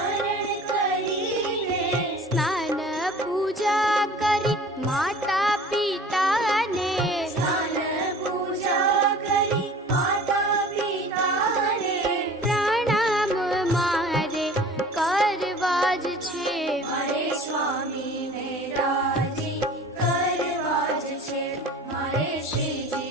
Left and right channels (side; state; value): both; normal; correlation 0.44